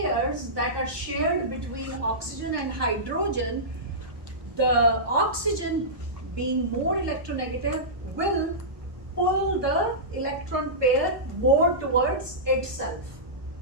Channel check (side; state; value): left; late; 1.2 ms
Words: that are shared between oxygen and hydrogen, the oxygen being more electronegative will pull the electron pair more towards itself.